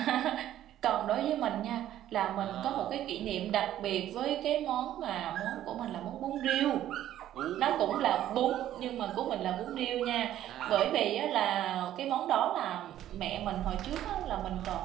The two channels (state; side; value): quieter; left; 12.3 dB